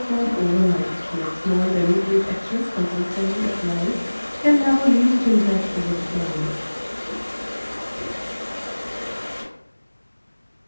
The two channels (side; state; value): both; inverted; correlation -1.00